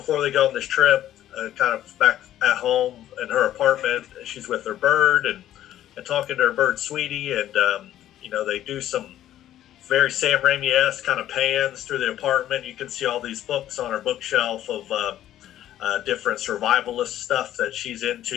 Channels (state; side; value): quieter; right; 12.4 dB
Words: they go on this trip, kind of back at home in her apartment, she's with her bird and talking to her bird Sweetie, and they do some very Sam Raimi-esque kind of pans through the apartment. You can see all these books on her bookshelf of different survivalist stuff that she's